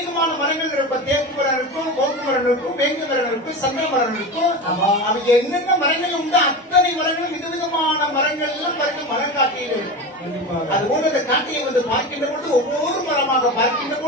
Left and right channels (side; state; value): both; normal; correlation 0.25